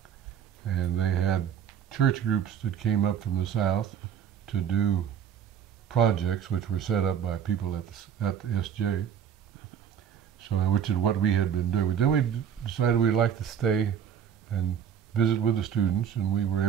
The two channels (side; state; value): left; quieter; 8.6 dB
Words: And they had church groups that came up from the south to do projects which were set up by people at the SJ. So, which is what we had been doing. But then we decided we'd like to stay and visit with the students, and we were